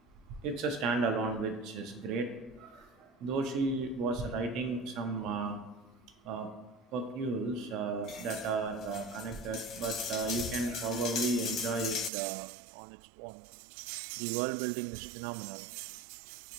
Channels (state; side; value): drops out; left; at 12.1 s